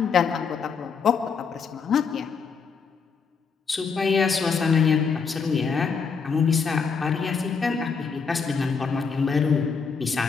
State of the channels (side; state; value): right; quieter; 5.6 dB